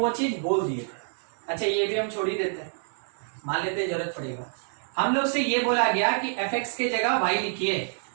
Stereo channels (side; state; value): left; silent; 60 dB below the other